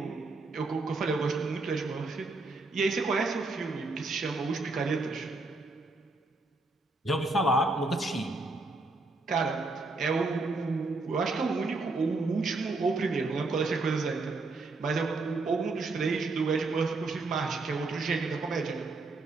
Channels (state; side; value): quieter; left; 3.4 dB